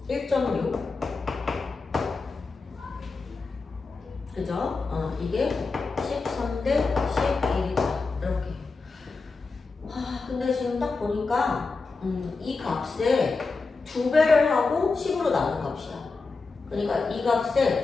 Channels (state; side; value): quieter; right; 4.1 dB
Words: 1.6 그죠? 이게 13대 11이다 이렇게. 근데 지금 딱 보니까 이 값에 2배를 하고 10으로 나눈 값이야. 그러니까 이